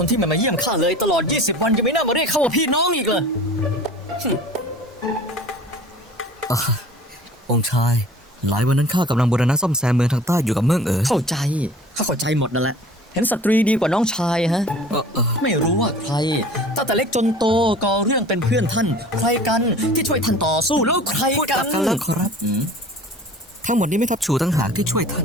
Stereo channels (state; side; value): normal; both; correlation 0.44